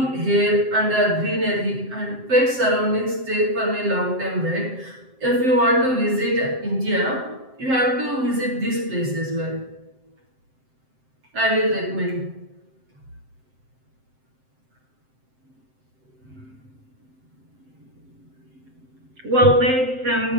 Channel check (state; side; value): late; left; 7.7 ms